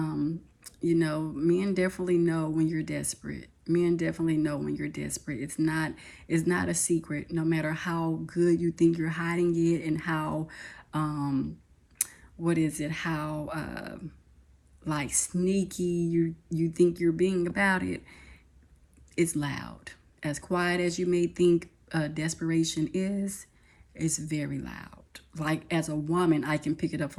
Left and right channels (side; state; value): both; identical; correlation 1.00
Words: definitely know when you're desperate. Men definitely know when you're desperate. It's not a secret. No matter how good you think you're hiding it, and how how like sneaky you think you're being about it, it's loud. As quiet as you may think desperation is, it's very loud. Like, as a woman, I can pick it up